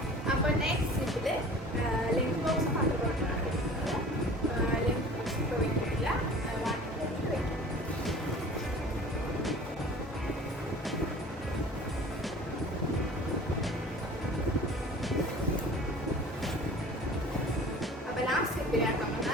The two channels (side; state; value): both; normal; correlation 0.43